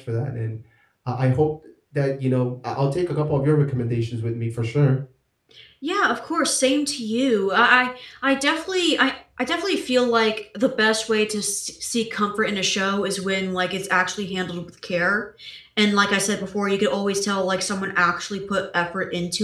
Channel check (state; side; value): identical; both; correlation 1.00